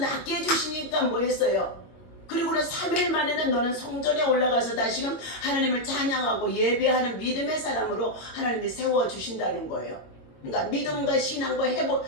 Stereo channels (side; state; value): right; late; 22 ms